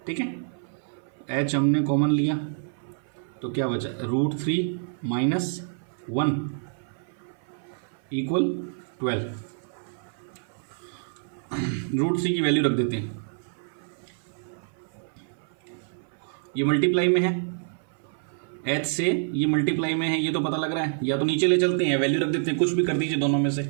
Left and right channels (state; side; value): silent; left; 56 dB below the other